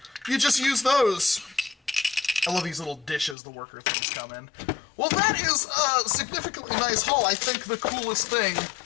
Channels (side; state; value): right; drops out; at 3.4 s